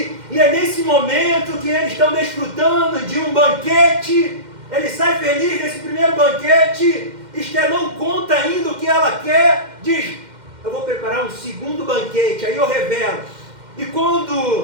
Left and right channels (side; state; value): left; late; 2.1 ms